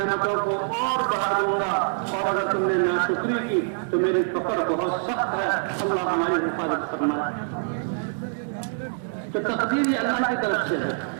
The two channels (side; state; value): left; silent; digital silence